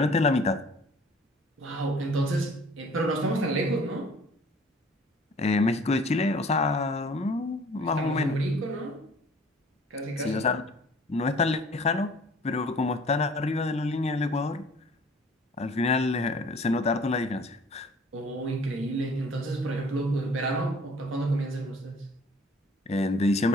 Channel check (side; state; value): both; normal; correlation 0.51